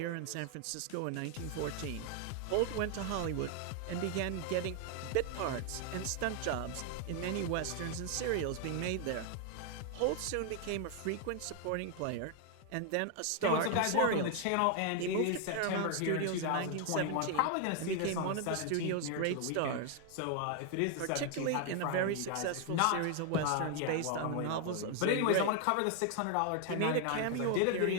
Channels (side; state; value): both; different; correlation 0.00